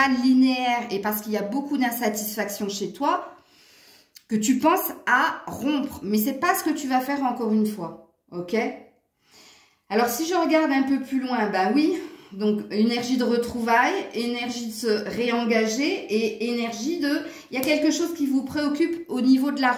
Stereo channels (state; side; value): identical; both; correlation 1.00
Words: linéaire et parce qu'il y a beaucoup d'insatisfaction chez toi, que tu penses à rompre. Mais c'est pas ce que tu vas faire encore une fois, ok? Alors si je regarde un peu plus loin, ben oui... Donc, énergie de retrouvailles, énergie de se réengager et énergie de... Il y a quelque chose qui vous préoccupe au niveau de